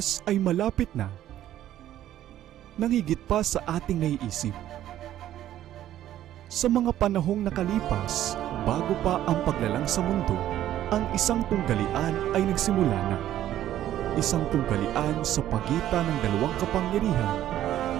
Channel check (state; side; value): quieter; left; 12.4 dB